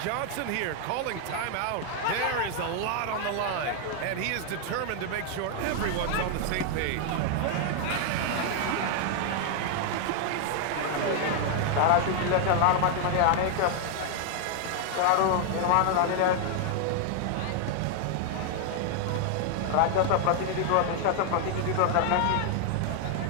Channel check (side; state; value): both; different; correlation 0.00